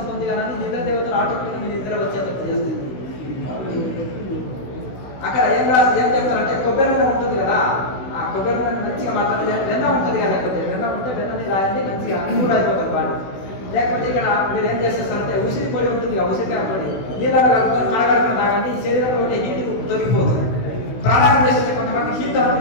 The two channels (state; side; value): late; right; 16 ms